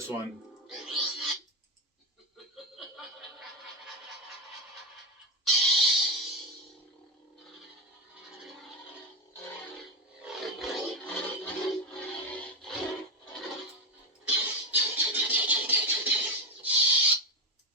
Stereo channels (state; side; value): normal; both; correlation 0.11